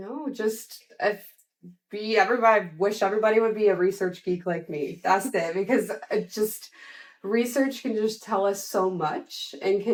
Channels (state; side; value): identical; both; correlation 1.00